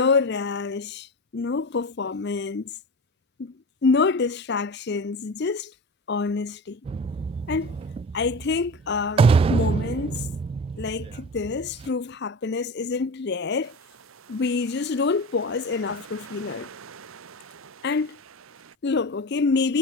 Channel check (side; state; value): both; normal; correlation 0.28